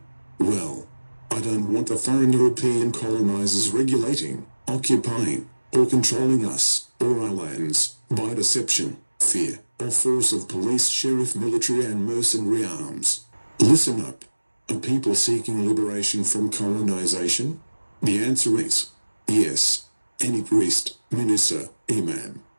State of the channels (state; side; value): inverted; both; correlation -1.00